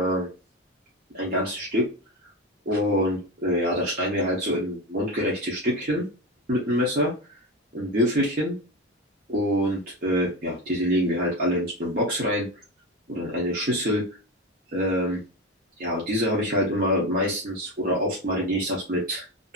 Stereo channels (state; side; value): normal; both; correlation 0.20